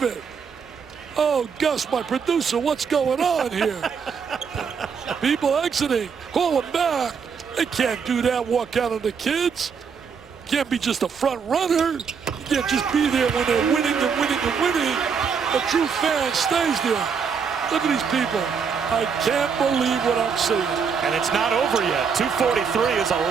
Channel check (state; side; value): quieter; left; 6.2 dB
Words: it. Oh, Gus, my producer, what's going on here? People exiting. Call them back. They can't do that, walk out on the kids. Can't be just a front runner. You can't just be there when they're winning and winning and winning. A true fan stays there. Look at these people. I can't believe what I'm seeing. And it's not over yet. 2:43 is a